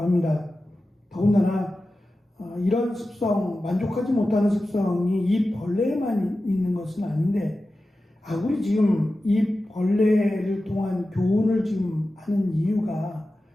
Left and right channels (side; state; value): both; normal; correlation 0.94